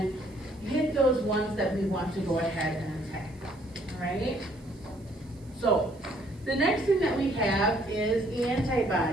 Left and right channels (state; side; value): noise; right; hiss, 29 dB below the sound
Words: hit those ones that we want to go ahead and attack, all right? So, the next thing that we have is